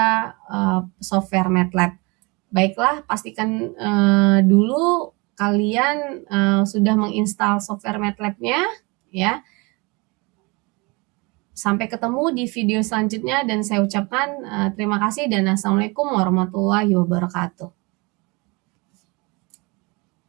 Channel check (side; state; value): left; quieter; 27.3 dB